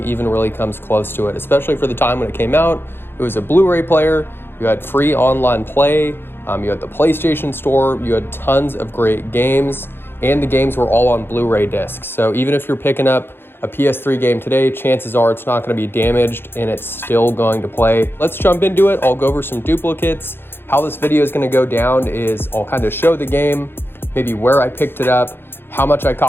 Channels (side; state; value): right; late; 0.10 ms